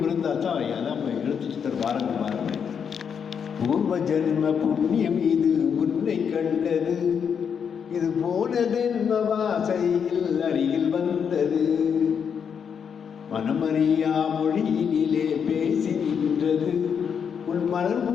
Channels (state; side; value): quieter; right; 7.1 dB